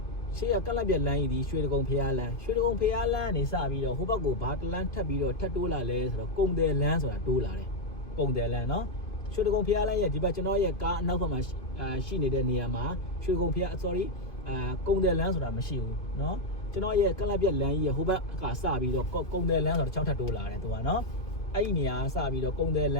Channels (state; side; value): late; right; 2.5 ms